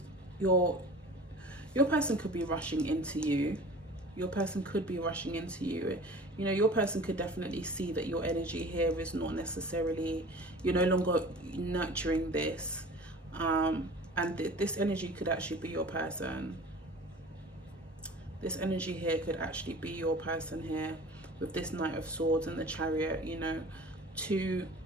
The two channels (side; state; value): both; normal; correlation 0.41